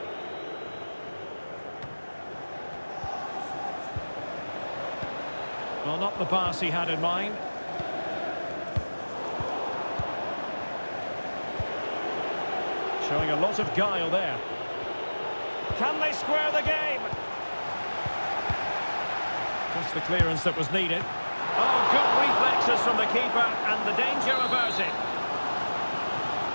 Well, not the pass he had in mind. Showing a lot of guile there. Can they square the game? Just the clearance that was needed. Oh, good reflexes from the keeper, and the danger averted.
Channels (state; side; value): inverted; both; correlation -1.00